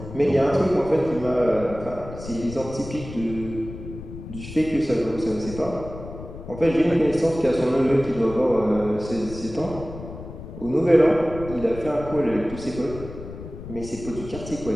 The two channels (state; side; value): noise; left; rumble, 12 dB below the sound